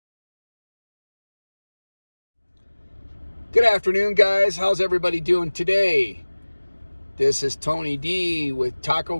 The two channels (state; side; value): inverted; both; correlation -1.00